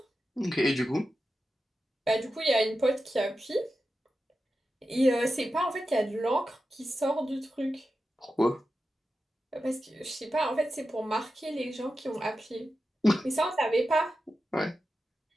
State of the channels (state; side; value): normal; both; correlation 0.91